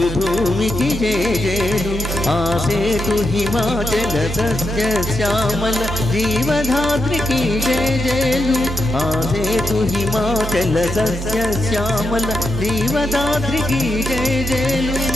భూమికి జేజేలు. ఆసేతు హిమాచల సస్య శ్యామల జీవధాత్రికి జేజేలు. ఆసేతు హిమాచల సస్య శ్యామల జీవధాత్రికి జేజేలు.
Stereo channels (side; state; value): both; normal; correlation 0.85